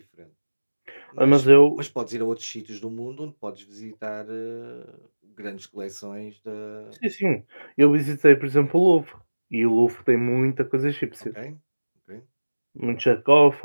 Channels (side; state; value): both; inverted; correlation -1.00